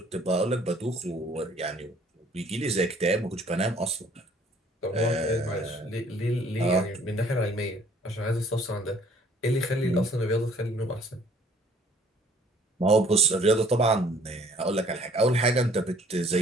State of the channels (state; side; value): normal; both; correlation 0.58